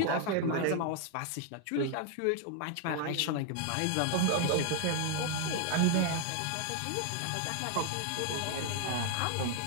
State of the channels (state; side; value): different; both; correlation 0.00